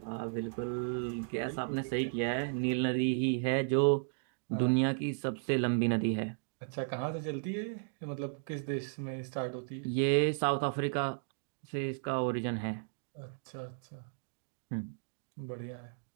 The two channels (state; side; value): silent; left; digital silence